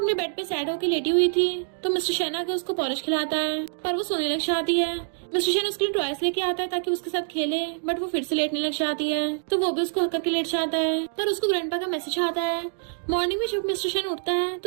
बेड पे सैड होकर लेटी हुई थी तो मिस्टर शेन आके उसको पॉलिश खिलाता है पर वो सोने लग जाती है। मिस्टर शेन उसके लिए टॉयज लेके आता है ताकि उसके साथ खेले, बट वो फिर से लेटने लग जाती है तो वो भी उसको हक करके लेट जाता है। पर उसको ग्रैंडपा का मैसेज आता है। मॉर्निंग में जब मिस्टर शेन उठता है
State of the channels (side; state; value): left; silent; 61 dB below the other